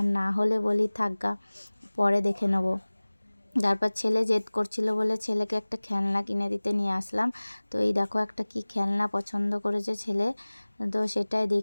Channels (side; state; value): both; inverted; correlation -1.00